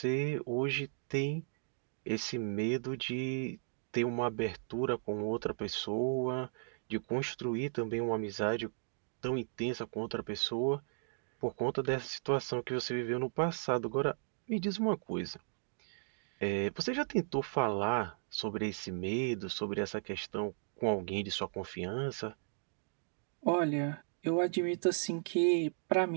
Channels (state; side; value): silent; left; digital silence